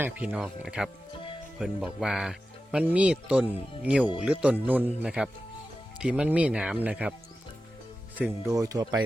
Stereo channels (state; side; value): normal; both; correlation 0.93